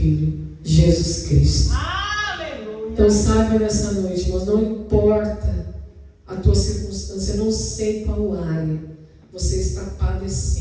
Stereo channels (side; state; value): both; identical; correlation 1.00